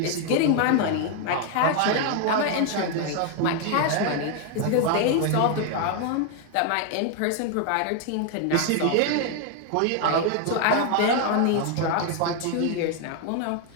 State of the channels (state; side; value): different; both; correlation 0.00